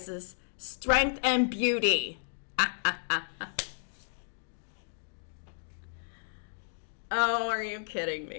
strength and beauty. Oh, are you kidding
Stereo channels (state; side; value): silent; right; digital silence